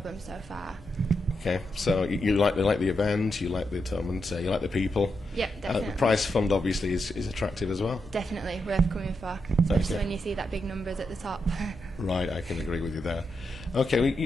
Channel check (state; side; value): normal; both; correlation 0.84